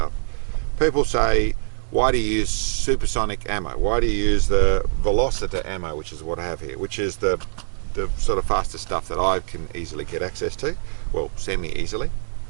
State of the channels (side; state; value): left; silent; digital silence